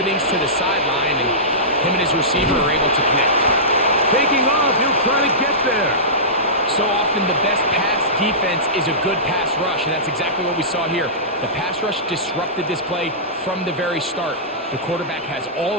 to the sideline, and him and his receiver are able to connect. Taking off, he'll try to get there. So often the best pass defense is a good pass rush, and that's exactly what we saw here. The pass rush disrupted this play from the very start. The quarterback has all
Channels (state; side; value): normal; both; correlation -0.20